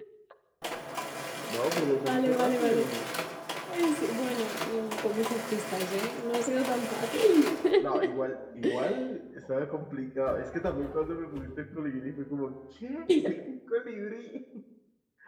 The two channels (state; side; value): identical; both; correlation 1.00